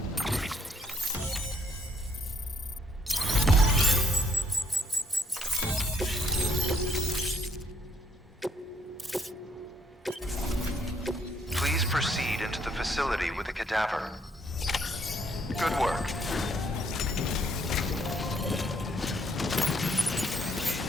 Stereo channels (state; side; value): normal; both; correlation 0.69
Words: Please proceed into the facility with a cadaver. Good work.